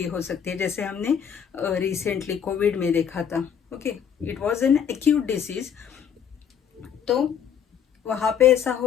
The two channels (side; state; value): right; quieter; 8.1 dB